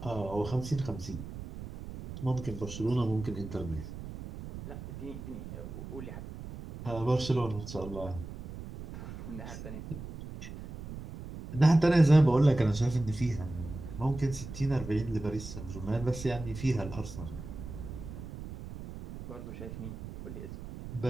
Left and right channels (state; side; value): noise; right; rumble, 10 dB below the sound